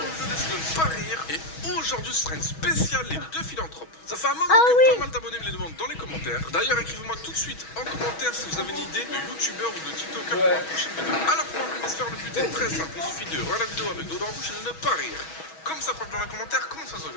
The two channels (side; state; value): right; late; 6.2 ms